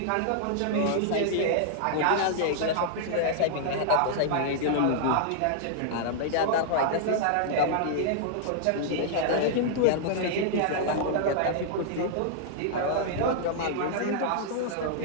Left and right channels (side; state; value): both; different; correlation -0.01